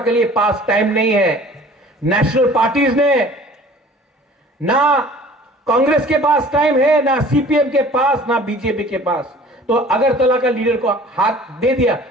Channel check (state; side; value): normal; both; correlation 0.48